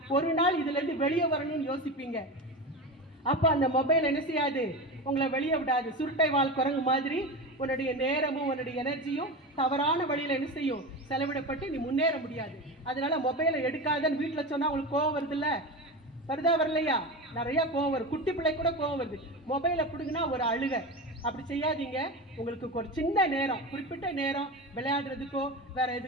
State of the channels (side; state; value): both; normal; correlation 0.24